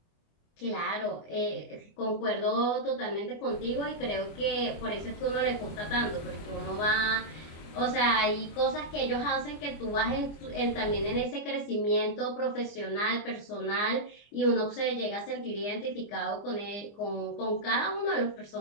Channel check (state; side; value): late; right; 25 ms